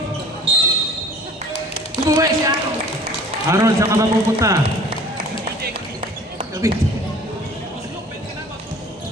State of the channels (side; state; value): both; normal; correlation 0.48